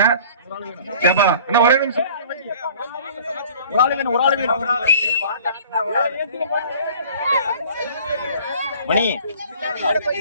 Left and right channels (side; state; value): both; inverted; correlation -0.49